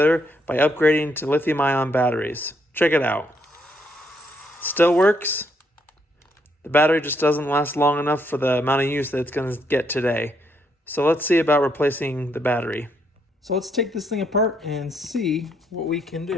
by upgrading to lithium-ion batteries. Check it out. Still works. The battery just doesn't last long enough for the amount of use that it's going to get today. So let's see about replacing the battery. So let's take this thing apart and see what we can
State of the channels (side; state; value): both; normal; correlation 0.74